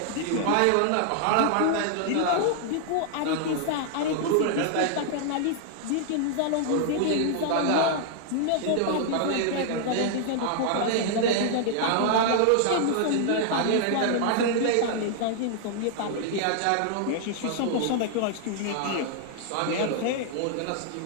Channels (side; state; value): both; different; correlation 0.00